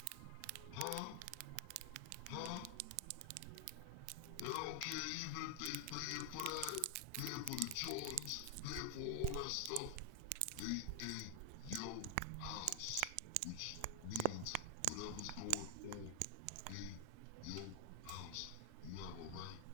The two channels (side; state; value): both; different; correlation 0.00